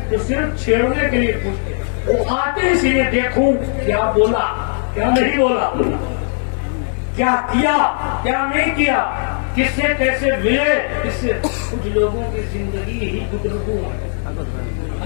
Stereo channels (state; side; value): silent; right; 60 dB below the other